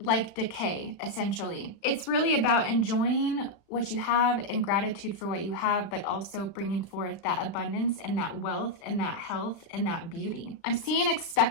like decay, essentially. It's really about enjoying what you have and gratitude for what you have, but also bringing forth that abundance and that wealth and that health and that beauty. I'm seeing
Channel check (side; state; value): right; late; 36 ms